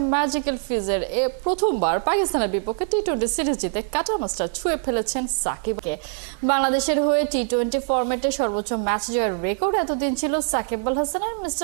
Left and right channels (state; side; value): silent; left; 63 dB below the other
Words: ম্যাজিক্যাল ফিজের। প্রথমবার পাকিস্তানের বিপক্ষে টি-20 সিরিজ জিতে কাটা মাস্টার ছুঁয়ে ফেলেছেন সাকিবকে। বাংলাদেশের হয়ে টি-20 ফরম্যাটে সর্বোচ্চ ম্যাচ জয়ের রেকর্ড এতদিন ছিল সাকিব আল হাসানের।